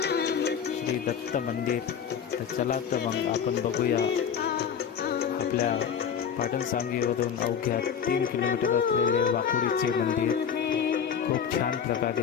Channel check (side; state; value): right; quieter; 7.6 dB